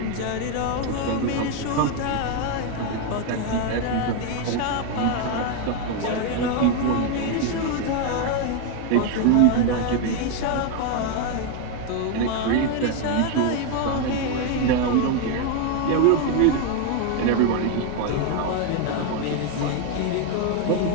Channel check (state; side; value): different; both; correlation 0.01